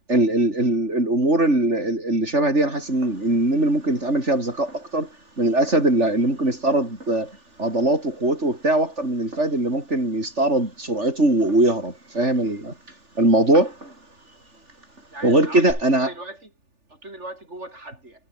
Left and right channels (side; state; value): left; late; 3.4 ms